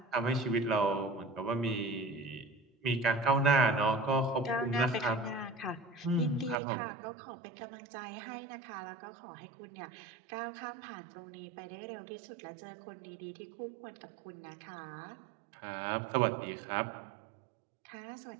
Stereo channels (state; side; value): drops out; left; at 6.6 s